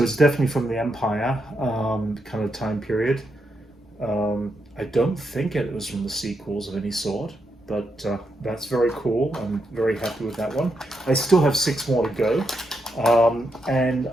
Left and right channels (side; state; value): both; normal; correlation 0.83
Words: it's definitely from the Empire kind of time period. I don't think it was from the sequels of any sort, but that's very cool. I'm very happy with that one. I still have 6 more to go, and